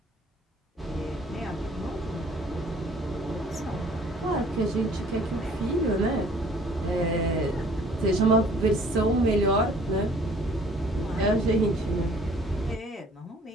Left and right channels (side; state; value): both; normal; correlation 0.54